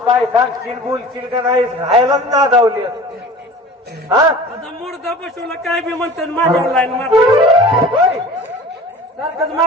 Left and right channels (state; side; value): normal; both; correlation 0.40